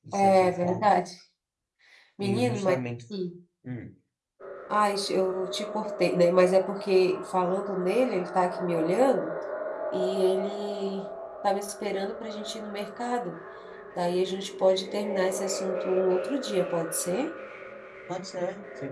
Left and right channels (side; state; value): both; identical; correlation 1.00